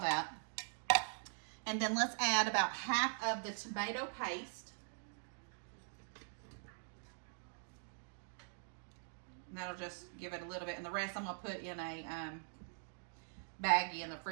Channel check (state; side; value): silent; left; digital silence